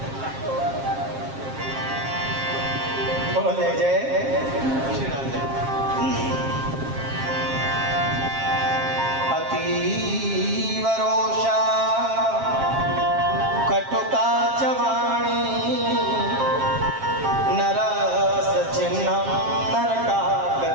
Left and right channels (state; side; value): late; left; 7.5 ms